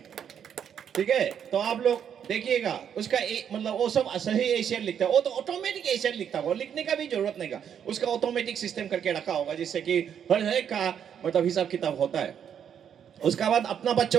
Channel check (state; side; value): quieter; left; 8.5 dB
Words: ठीक है? तो आप लोग देखिएगा उसका मतलब वो सब सही एशियर लिखता है, वो तो ऑटोमेटिक एशियर लिखता होगा, लिखने का भी जरूरत नहीं का, उसका ऑटोमेटिक सिस्टम करके रखा होगा जिससे कि हर एक का मतलब हिसाब किताब होता है। उसके बाद अपना